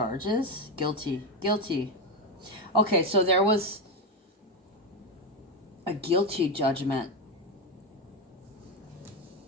Guilty. Okay, so there was a guilty judgment.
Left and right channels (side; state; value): both; normal; correlation 0.11